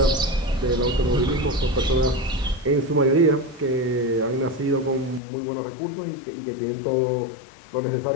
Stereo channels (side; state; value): right; drops out; at 5.2 s